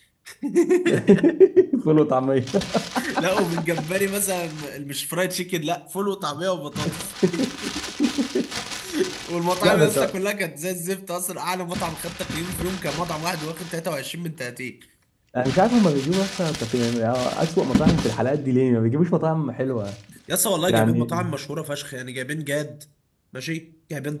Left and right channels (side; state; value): both; identical; correlation 1.00